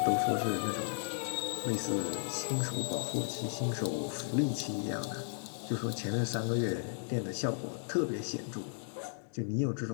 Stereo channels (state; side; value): silent; right; digital silence